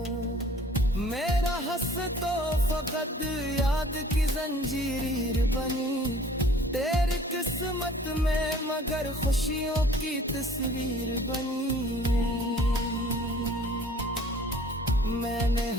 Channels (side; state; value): both; normal; correlation 0.52